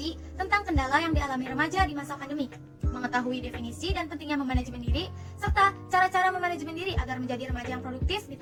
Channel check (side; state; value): both; identical; correlation 1.00